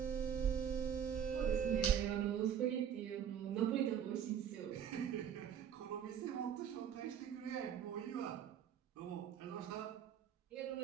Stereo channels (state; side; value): quieter; left; 8.7 dB